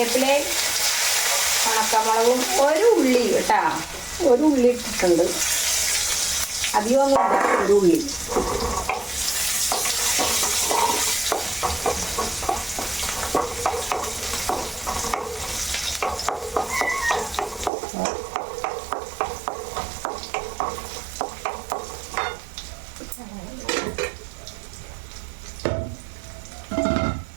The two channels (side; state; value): left; drops out; at 17.7 s